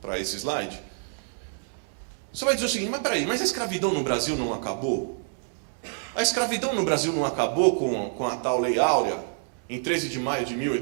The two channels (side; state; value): left; silent; digital silence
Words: esse slide, você vai dizer o seguinte, mas peraí, mas a escravidão no Brasil não acabou? A escravidão no Brasil não acabou com a tal Lei Áurea, em 13 de maio de